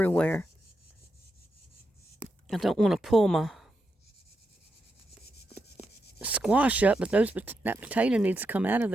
I don't want to pull my squash up, but that potato needs to come out of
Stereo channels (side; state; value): both; normal; correlation 0.85